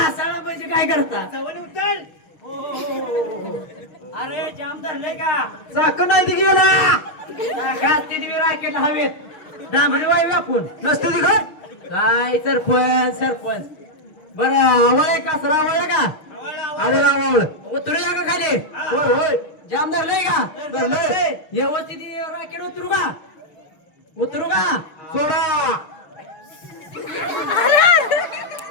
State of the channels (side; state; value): right; late; 6.5 ms